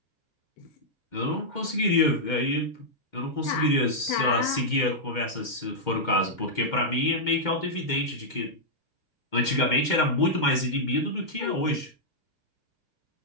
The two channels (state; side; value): late; right; 2.1 ms